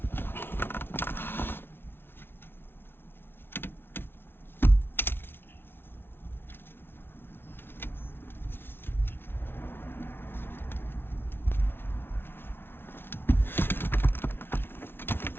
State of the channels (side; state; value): right; late; 0.11 ms